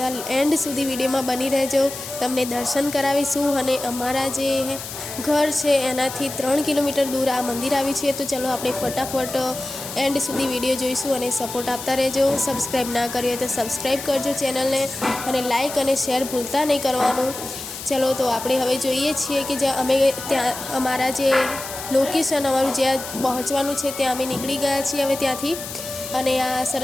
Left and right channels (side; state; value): left; noise; hiss, 10 dB below the sound